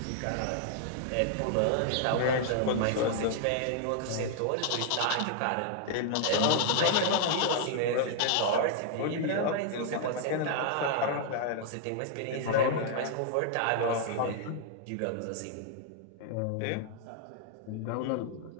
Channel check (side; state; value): both; different; correlation -0.01